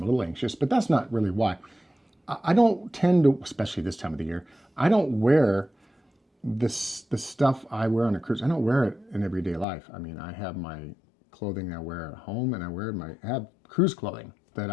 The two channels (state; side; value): drops out; right; at 9.7 s